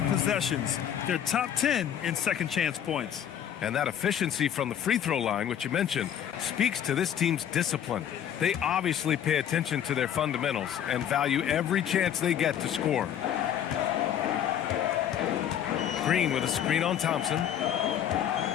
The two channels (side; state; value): right; quieter; 9.7 dB